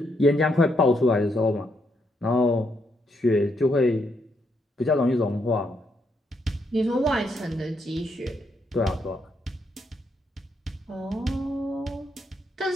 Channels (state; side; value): normal; both; correlation 0.77